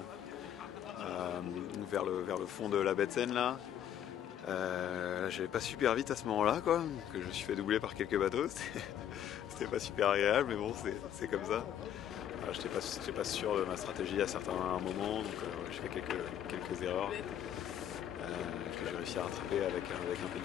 vers le fond de la baie de Seine là. J'allais pas super vite à ce moment-là, quoi, donc je me suis fait doubler par quelques bateaux. C'était pas super agréable, mais bon, c'est comme ça. J'étais pas sûr de ma stratégie à certains moments, donc j'ai fait quelques erreurs que j'ai réussi à rattraper avec un peu de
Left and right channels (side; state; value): right; quieter; 10.2 dB